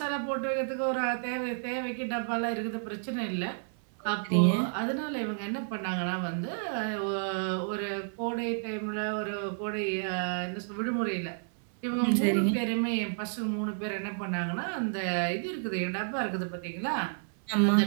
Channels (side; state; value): left; silent; 57 dB below the other